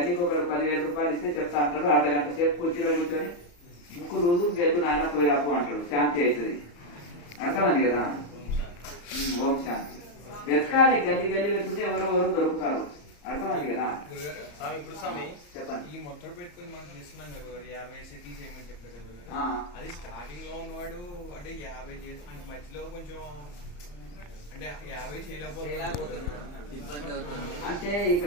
ఒకటి 10,000 రూపాయలు ఇస్తే చెప్తా అంటాడు. అర్ధగంట సేపు కుర్చీలో కూర్చొని ముక్కు రోజు గెద్దు నాయన పోయిరాపు అంటాడు. శాంతి అవుతుంది. అర్థమని కదా? ఓం శాంతి. వెతకాలి, గల్లి వెతుకుంటే ఎవరో దొరుకుతారు. అర్థమైంది కదా? చెప్పండి. ఈ మొత్తం పెట్టుకుని మనం చేస్తున్నాం కదా, 50 సెటిల్ చేయమని చెప్పారు కదా. అది స్టార్టింగ్ లో ఉన్నవాడు అంటే 50 చేసి అంటే మధ్యలో కొంచెం అంటే 50 చేయలేకపోతున్నాడు, ఇబ్బంది అవుతుంది. అంటే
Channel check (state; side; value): late; right; 34 ms